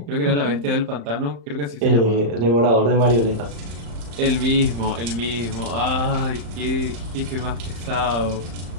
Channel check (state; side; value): late; left; 35 ms